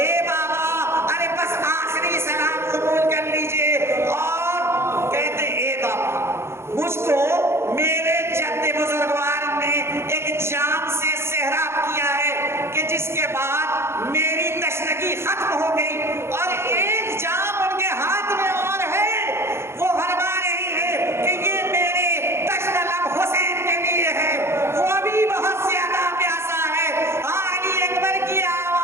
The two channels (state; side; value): late; left; 0.12 ms